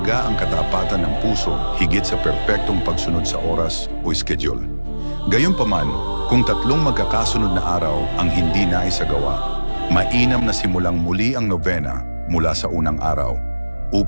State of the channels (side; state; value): both; inverted; correlation -1.00